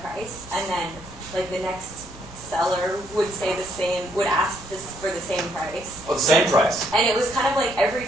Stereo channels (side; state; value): both; normal; correlation 0.71